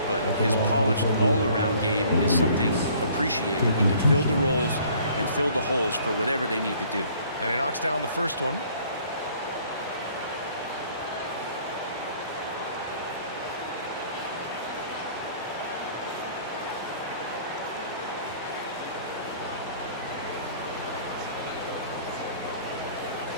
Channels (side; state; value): both; inverted; correlation -0.56